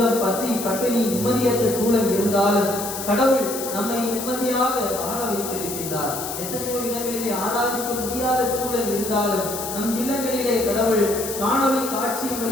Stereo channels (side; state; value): left; noise; hiss, 7 dB below the sound